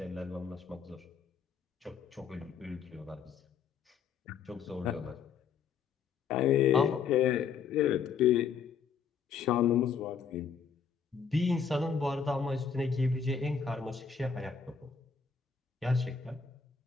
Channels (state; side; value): quieter; right; 6.5 dB